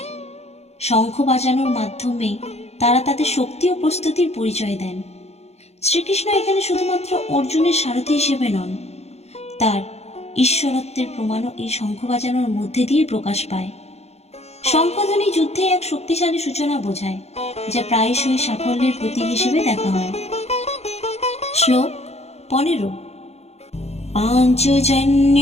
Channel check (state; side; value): late; right; 0.31 ms